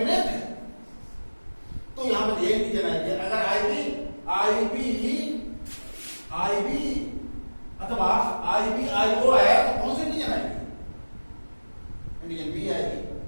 है, तो यहां पर ये एंटीजन आएगी। अगर आईबी अथवा आईओ आया, तो कौन सी एंटीजन आएगी? एंटीजन बी आएगी।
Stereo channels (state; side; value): inverted; both; correlation -1.00